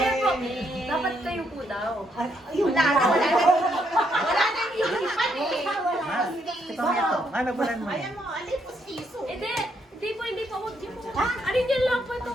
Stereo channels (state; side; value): normal; both; correlation 0.75